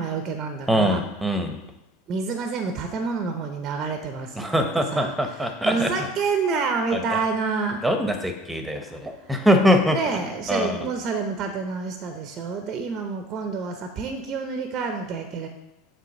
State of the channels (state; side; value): normal; both; correlation 0.56